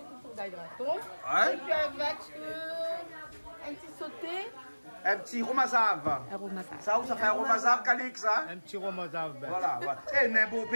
Rougail graton. Ouais. Et puis, avec un petit sauté. Un petit romazave. Un romazave. Ça, ça fait un romazave Calix, ça? Un petit romazave. Voilà. Et un beau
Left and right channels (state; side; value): inverted; both; correlation -1.00